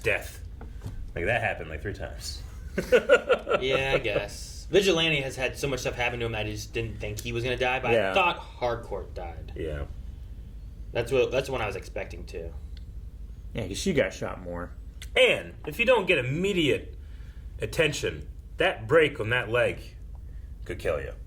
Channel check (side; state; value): both; identical; correlation 1.00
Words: Like that happened like 3 times. Yeah, I guess. Vigilante has had so much stuff happen to him that I just didn't think he was gonna die, but Yeah. I thought Harcourt died. Yeah. That's what I was expecting to. Yeah, because she got shot more. And if you don't get immediate attention, that break on that leg could kill you.